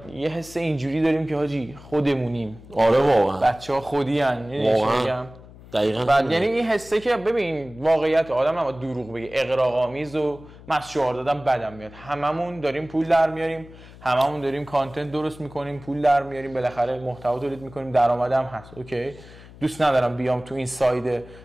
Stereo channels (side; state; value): left; noise; hum, 20 dB below the sound